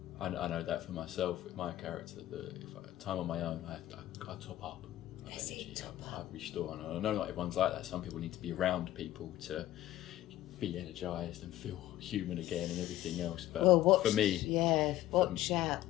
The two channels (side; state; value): right; quieter; 14.2 dB